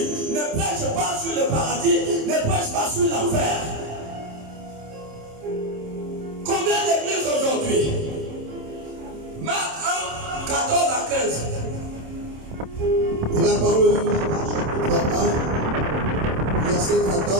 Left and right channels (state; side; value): late; left; 27 ms